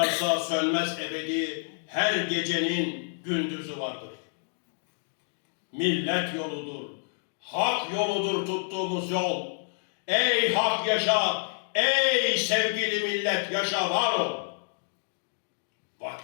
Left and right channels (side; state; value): right; silent; digital silence